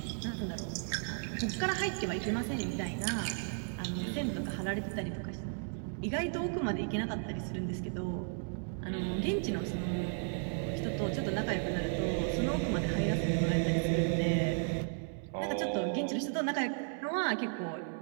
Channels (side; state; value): left; silent; 55 dB below the other